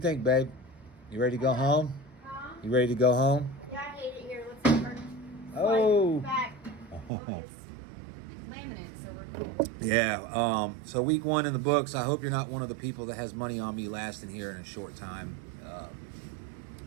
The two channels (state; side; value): drops out; left; at 7.1 s